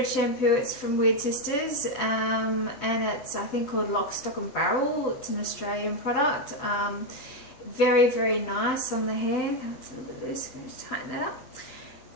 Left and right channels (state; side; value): late; right; 7.8 ms